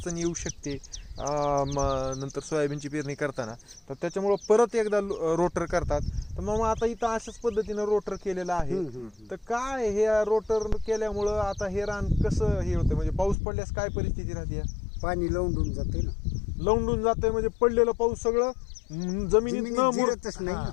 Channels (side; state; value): right; drops out; at 13.4 s